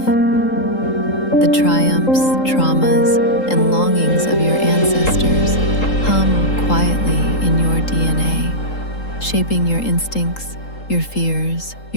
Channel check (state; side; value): late; right; 3.8 ms